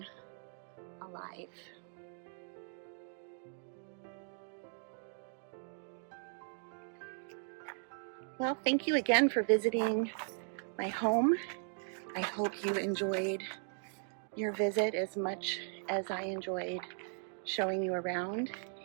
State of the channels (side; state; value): left; silent; 53 dB below the other